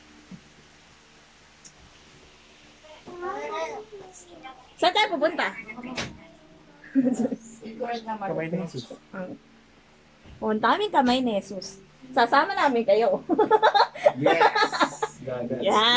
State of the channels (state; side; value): identical; both; correlation 1.00